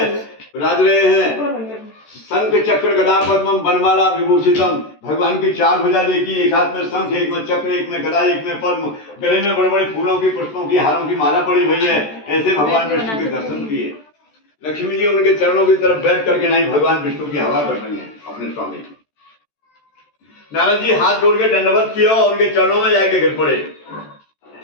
विराज रहे हैं, शंख चक्र गदा पद्मम बनमाला विभूषितम। भगवान की चार भुजा देखी, एक हाथ में शंख, एक में चक्र, एक में गदा, एक में पद्म, गले में बड़े बड़े फूलों की, पुष्पों की, हारों की माला पड़ी हुई है। ऐसे भगवान विष्णु के दर्शन किए। लक्ष्मी जी उनके चरणों की तरफ बैठ करके नहीं भगवान विष्णु की हवा कर रही है अपने स्वामी। नारद जी हाथ जोड़ के दंडवत किया और उनके चरणों में जाके गिर पड़े।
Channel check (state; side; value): late; right; 14 ms